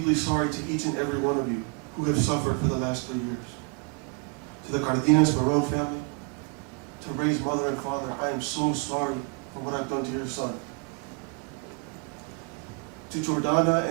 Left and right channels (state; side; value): quieter; left; 32.0 dB